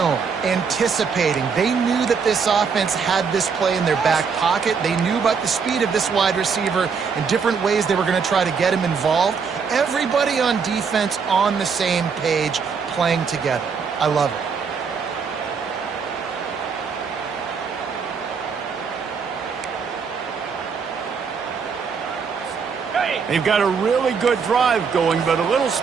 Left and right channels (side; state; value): left; quieter; 5.8 dB